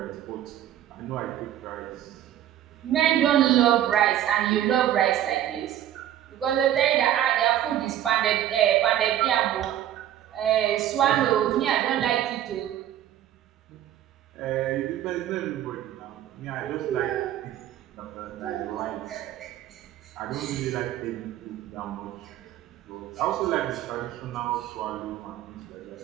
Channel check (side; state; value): left; quieter; 11.8 dB